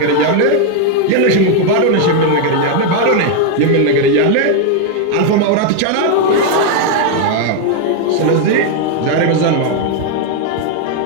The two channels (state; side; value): different; both; correlation 0.01